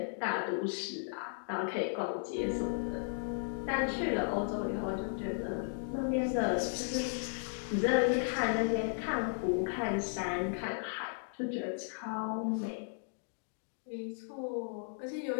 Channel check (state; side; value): silent; right; digital silence